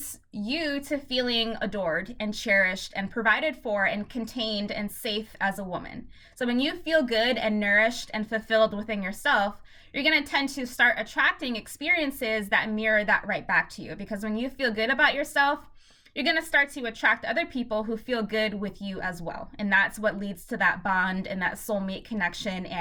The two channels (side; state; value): both; identical; correlation 1.00